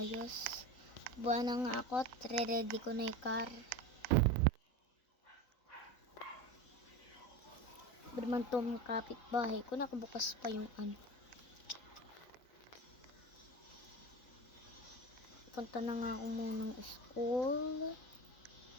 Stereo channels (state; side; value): late; right; 4.0 ms